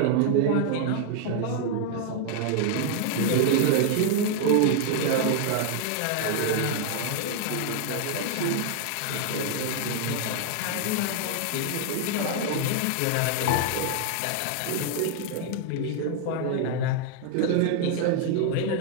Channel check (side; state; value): both; different; correlation 0.00